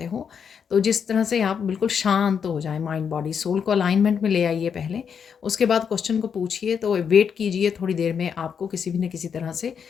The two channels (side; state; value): right; quieter; 7.0 dB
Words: हो। तो जिस तरह से आप बिल्कुल शांत हो जाए, माइंड बॉडी सोल को अलाइनमेंट में ले आइए पहले, उसके बाद क्वेश्चन को पूछिए। तो वेट कीजिए, थोड़ी देर में आपको किसी भी न किसी तरह से